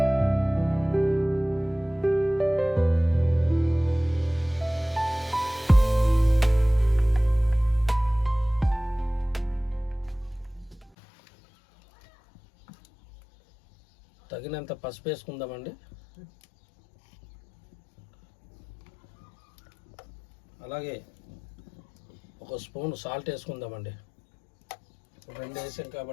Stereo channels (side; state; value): right; drops out; at 10.9 s